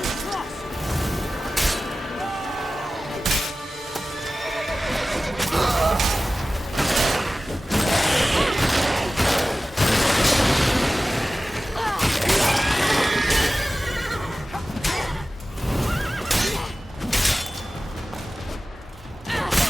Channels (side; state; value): both; normal; correlation 0.96